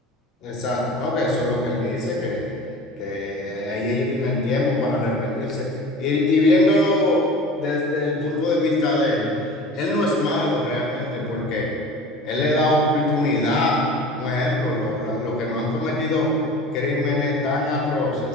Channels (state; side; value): normal; both; correlation 0.39